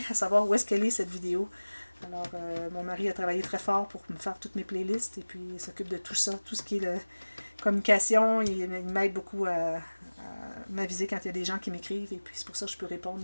à savoir où est-ce qu'elle est, cette vidéo. Alors, mon mari a travaillé très fort pour me faire toutes mes playlists. Et puis, il s'occupe de tout ça, tout ce qui est communication. Il m'aide beaucoup à m'aviser quand il y a des gens qui m'écrivent. Et puis, c'est pour ça que je peux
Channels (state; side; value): inverted; both; correlation -1.00